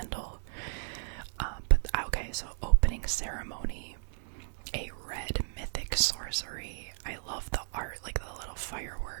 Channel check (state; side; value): silent; left; digital silence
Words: But okay, so Opening Ceremony. A red mythic sorcery. I love the art, like the little